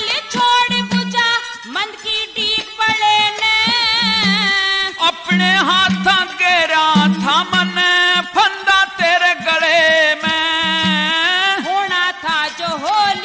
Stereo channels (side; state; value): both; identical; correlation 1.00